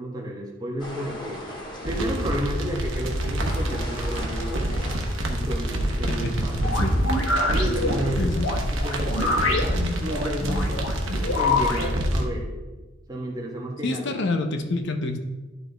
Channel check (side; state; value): both; normal; correlation 0.60